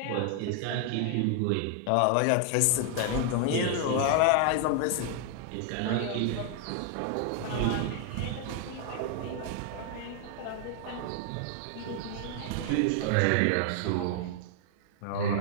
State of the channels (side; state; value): both; different; correlation 0.00